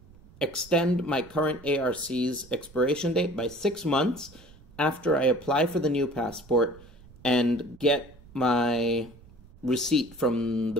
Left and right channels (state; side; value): noise; right; rumble, 23 dB below the sound